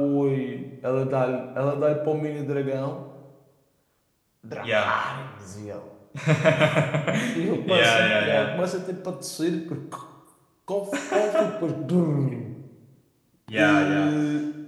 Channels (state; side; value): identical; both; correlation 1.00